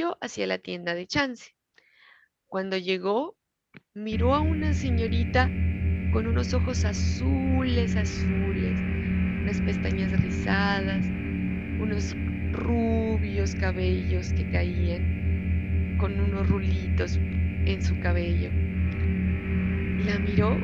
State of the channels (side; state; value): both; identical; correlation 1.00